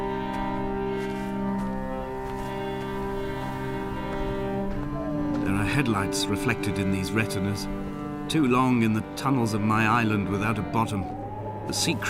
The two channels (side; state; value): both; identical; correlation 1.00